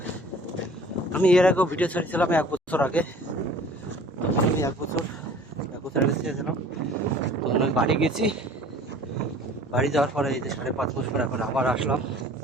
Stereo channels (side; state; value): both; normal; correlation 0.48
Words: আমি এর আগেও ভিডিও ছেড়েছিলাম 1 বছর আগে। তখন আমি 1 বছর আগে ছেড়েছিলাম। তখন আমি বাড়ি গেছি, বাড়ি যাওয়ার পরে এই যে 5.5 মাস পরে এখন আবার আসলাম।